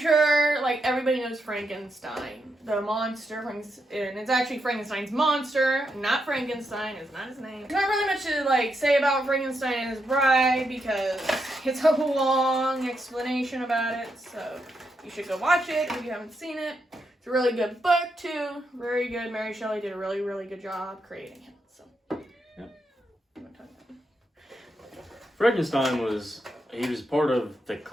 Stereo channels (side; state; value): both; normal; correlation 0.82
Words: like, everybody knows Frankenstein, the monster, and it's actually Frankenstein's monster, not Frankenstein, it's not his name. There's not really much to, like, say about Frankenstein and his bride, because it's a long explanation about it, so you should go watch it if you haven't seen it. It's a really good book, too, very good. Mary Shelley did a really, really good job creating him, so. Yep. Frankenstein was part of the